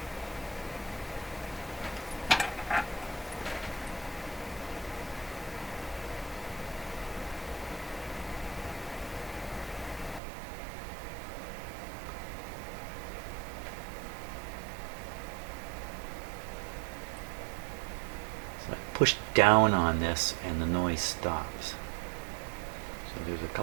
Push down on this and the noise stops. So there's a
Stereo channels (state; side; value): drops out; left; at 10.2 s